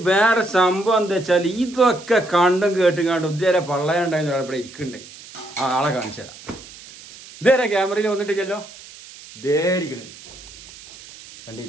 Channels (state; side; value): noise; right; hiss, 18 dB below the sound